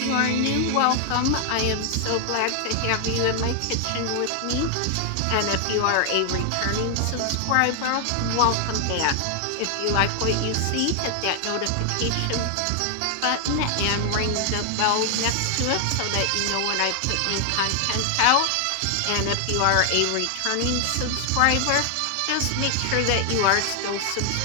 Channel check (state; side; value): different; both; correlation 0.00